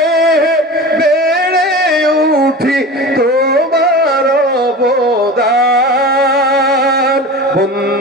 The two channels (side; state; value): both; normal; correlation 0.33